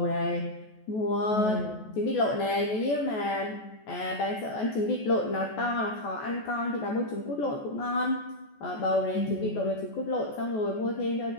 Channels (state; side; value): late; right; 14 ms